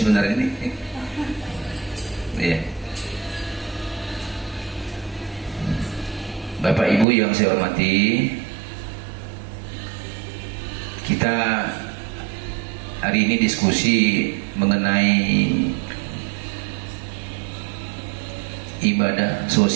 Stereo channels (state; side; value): drops out; left; at 7.1 s